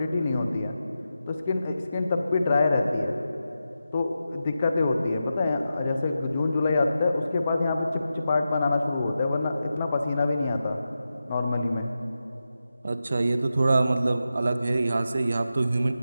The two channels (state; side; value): inverted; both; correlation -0.90